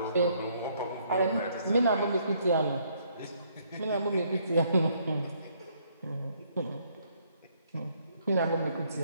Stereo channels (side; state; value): both; inverted; correlation -0.68